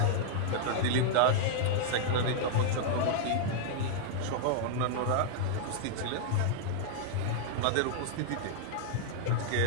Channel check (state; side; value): different; both; correlation -0.01